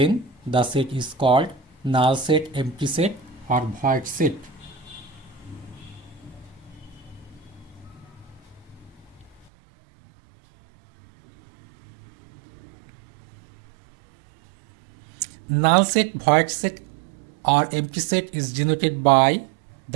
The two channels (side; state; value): left; drops out; at 9.5 s